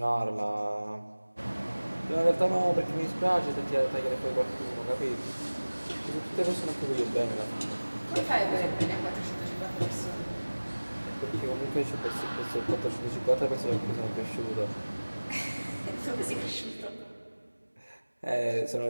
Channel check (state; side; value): inverted; both; correlation -1.00